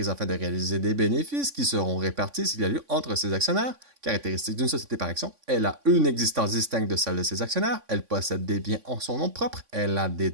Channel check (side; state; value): left; late; 3.5 ms